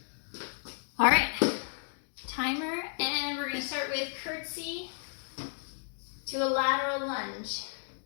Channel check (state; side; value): silent; right; digital silence